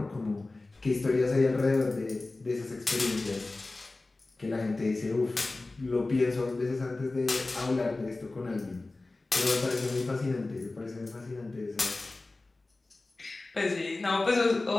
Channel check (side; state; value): right; quieter; 3.2 dB